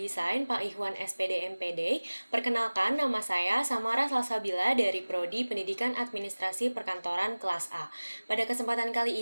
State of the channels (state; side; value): inverted; both; correlation -1.00